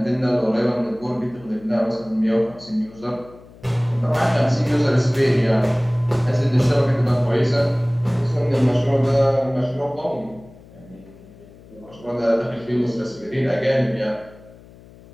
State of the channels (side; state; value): left; noise; hum, 22 dB below the sound